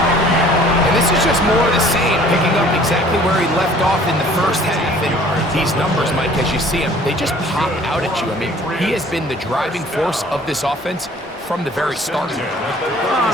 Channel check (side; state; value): both; normal; correlation 0.53